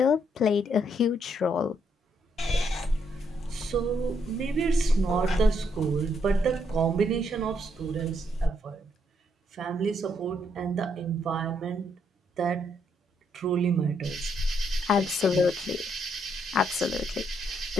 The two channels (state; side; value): normal; both; correlation 0.74